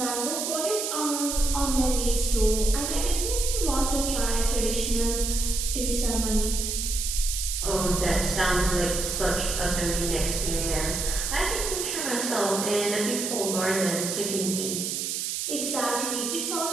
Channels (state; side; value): noise; right; hiss, 2 dB below the sound